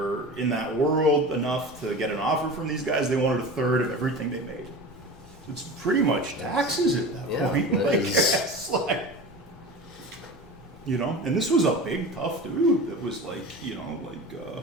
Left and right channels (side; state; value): both; normal; correlation 0.32